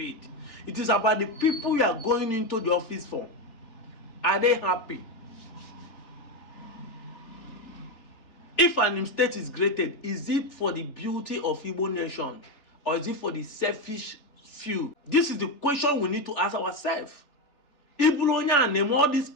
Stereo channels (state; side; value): late; right; 3.4 ms